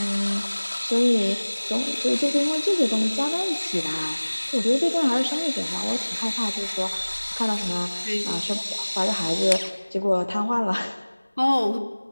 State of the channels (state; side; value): inverted; both; correlation -1.00